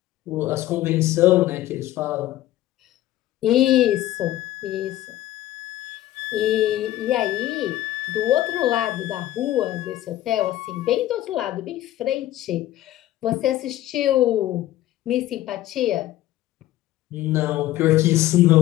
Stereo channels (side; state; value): right; quieter; 14.6 dB